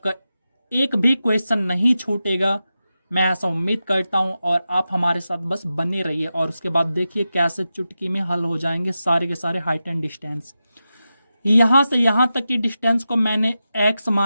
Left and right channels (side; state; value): both; inverted; correlation -0.92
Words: एक भी क्वेश्चन नहीं छूटेगा, मैं ऐसा उम्मीद करता हूं। और आप हमारे साथ बस बने रहिए और उसके बाद देखिए कैसे चुटकी में हल हो जाएंगे सारे के सारे हाइट एंड डिस्टेंस। यहाँ से यहाँ तक की डिस्टेंस को मैंने x